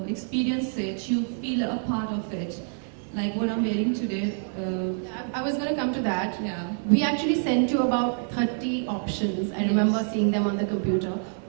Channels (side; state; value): left; silent; 56 dB below the other